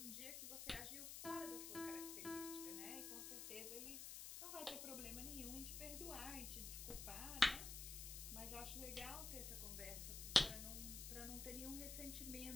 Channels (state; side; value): noise; left; hiss, 5 dB below the sound